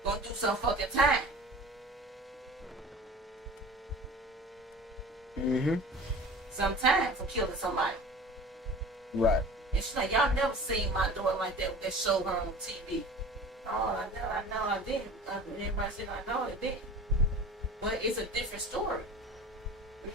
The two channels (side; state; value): both; normal; correlation 0.41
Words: gonna do some fucking time. Mm-hmm. Some time for killing somebody. Right. And she's like, y'all never seen my daughter like that when they show her on TV. Oh, I know, I didn't. Everybody said, I know, it didn't. But it's a different story. You